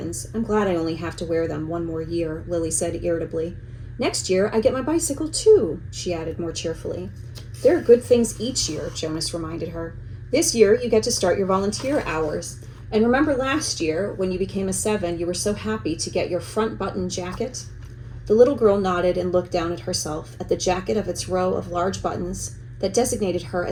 I'm glad I only have to wear them one more year, Lily said irritably. Next year, I get my bicycle too, she added more cheerfully. There are good things each year, Jonas reminded her. This year, you get to start your volunteer hours. And remember last year, when you became a 7, you were so happy to get your front button jacket? The little girl nodded and looked down at herself, at the jacket of its row of large buttons that designated her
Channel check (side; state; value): both; identical; correlation 1.00